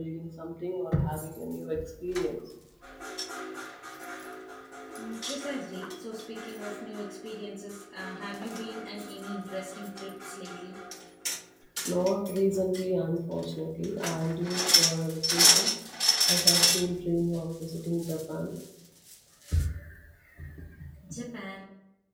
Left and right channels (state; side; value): identical; both; correlation 1.00